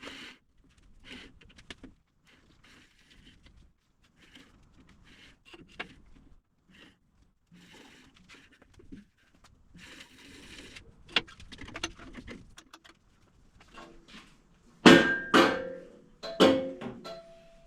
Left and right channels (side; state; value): both; identical; correlation 1.00